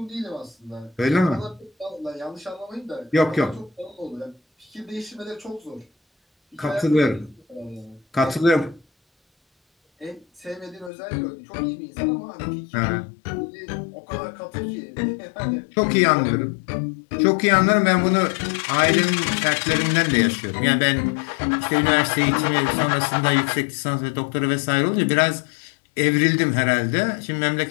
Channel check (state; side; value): drops out; right; at 10.9 s